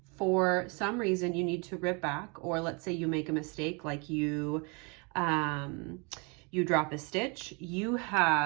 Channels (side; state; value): left; quieter; 32.2 dB